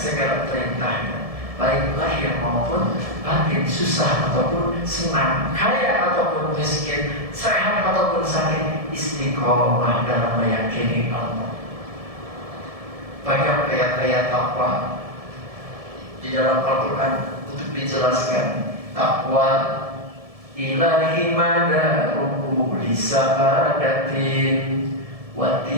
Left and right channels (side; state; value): left; late; 1.7 ms